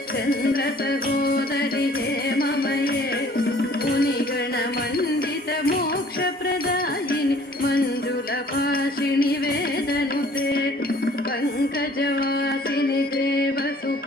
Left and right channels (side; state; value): both; normal; correlation 0.54